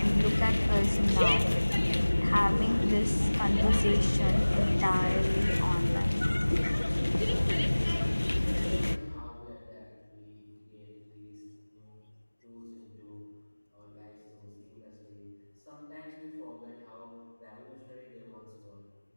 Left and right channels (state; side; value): inverted; both; correlation -1.00